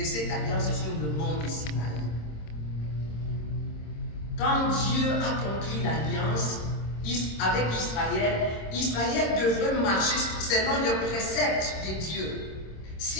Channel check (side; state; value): right; late; 26 ms